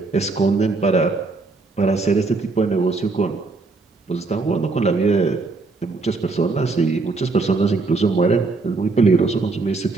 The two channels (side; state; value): left; quieter; 3.8 dB